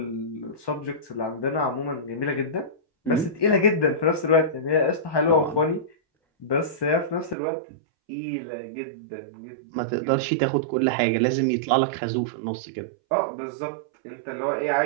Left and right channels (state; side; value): drops out; left; at 7.4 s